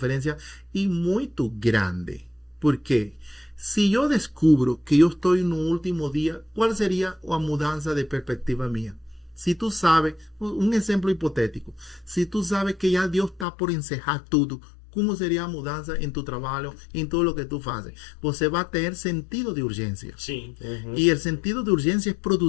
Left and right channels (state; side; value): drops out; right; at 13.5 s